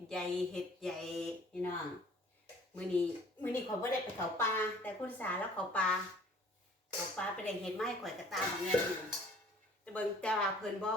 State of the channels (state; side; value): normal; both; correlation 0.53